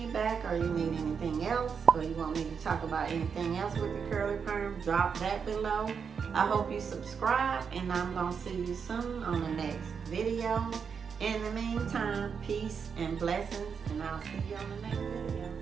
or you need anything else, or you want me to talk about anything else with the curly perm, drop that below. I hope you subscribe, and I'm going to see you soon on the next video. In the meantime, peace and blessings, and I'll see you on the next video.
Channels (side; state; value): left; quieter; 6.4 dB